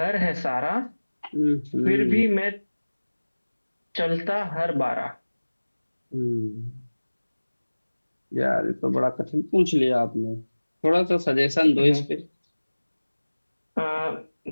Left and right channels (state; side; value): inverted; both; correlation -1.00